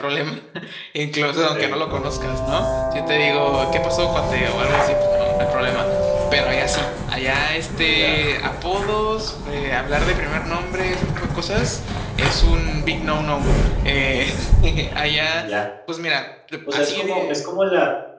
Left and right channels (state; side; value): identical; both; correlation 1.00